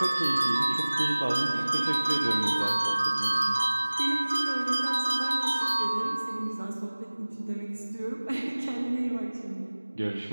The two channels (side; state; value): both; inverted; correlation -1.00